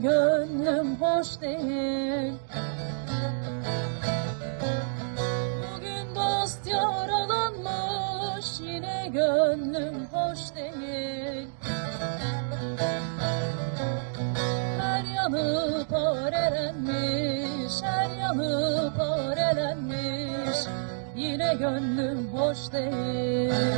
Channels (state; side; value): silent; left; digital silence